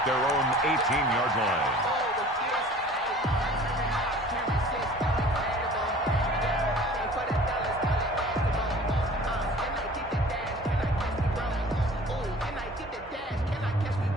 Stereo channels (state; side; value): normal; both; correlation 0.46